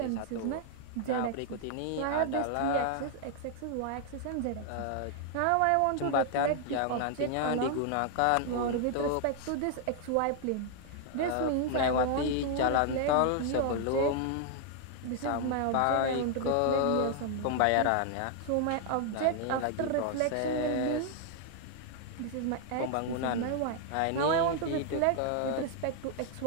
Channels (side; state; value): both; different; correlation 0.00